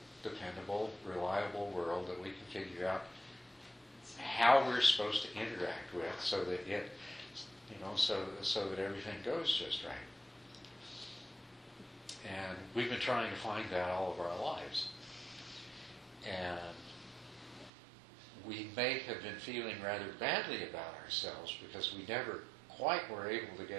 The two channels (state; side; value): drops out; left; at 17.7 s